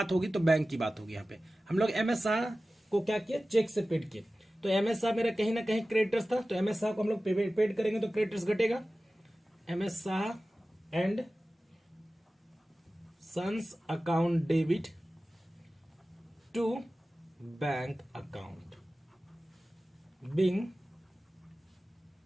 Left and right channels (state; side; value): normal; both; correlation 0.96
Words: होगी तो बैंक की बात होगी। यहाँ पे हम लोग एमएस शाह को क्या किया, चेक से पेड किए। तो एमएस शाह मेरा कहीं ना कहीं क्रेडिटर्स था, तो एमएस शाह को हम लोग पेड करेंगे तो क्रेडिटर्स घटेगा। MS Shah and sons account debit to bank account, being